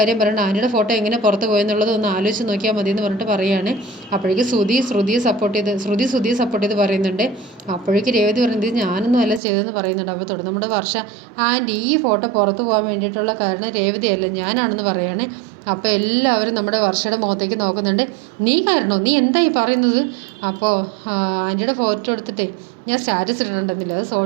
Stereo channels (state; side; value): drops out; left; at 9.4 s